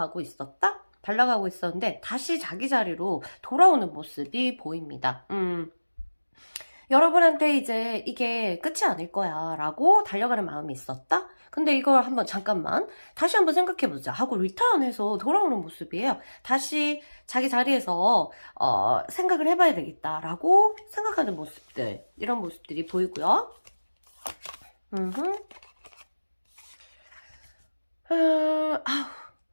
있었다? 달려가고 있었는데 다시 자기 자리로 돌아오는 모습이 보입니다. 여러분한테 이제 이게 끝이 아닐 거야 라고 달려가는 마음이 있었다? 근데 이걸 한번 잠깐만 다시 한번 생각해보자 하고 리턴해서 돌아오는 모습이에요. 다시 자기 자리에서 생각을 해봐야 되겠다 라고 생각하는 모습들, 이런 모습들이 보이고요.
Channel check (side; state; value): both; inverted; correlation -1.00